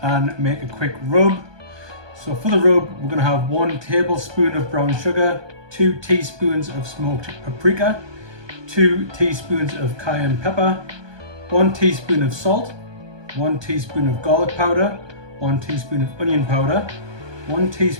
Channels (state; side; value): late; left; 1.2 ms